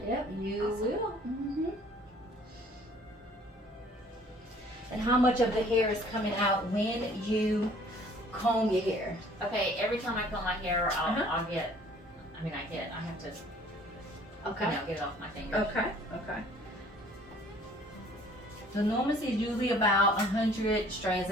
Yep, you Awesome. will. And how much of the hair is coming out when you comb your hair? Okay, every time I comb my hair, I'll get, I have to, Okay. get it off my fingers. Okay. The normal is usually about 100 strands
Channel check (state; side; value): normal; both; correlation 0.55